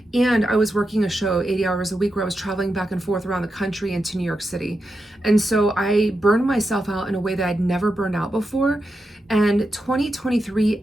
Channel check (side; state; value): both; normal; correlation 0.88